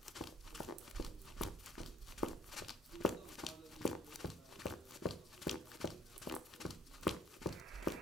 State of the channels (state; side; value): normal; both; correlation 0.54